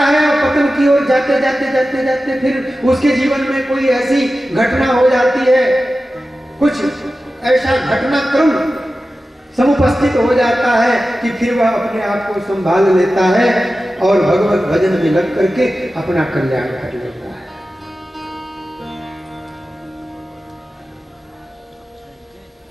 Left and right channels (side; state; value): both; normal; correlation 0.94